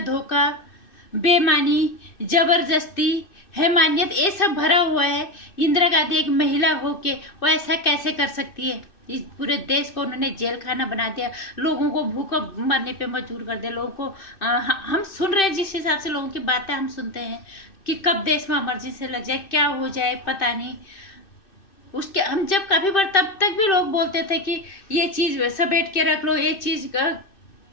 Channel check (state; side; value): late; right; 2.6 ms